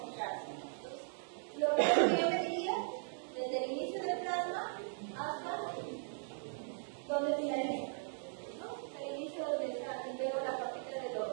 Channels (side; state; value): left; silent; digital silence